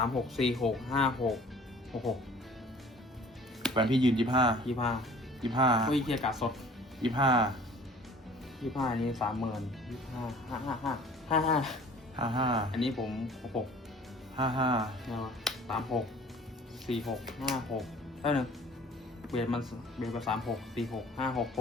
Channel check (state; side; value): normal; both; correlation 0.49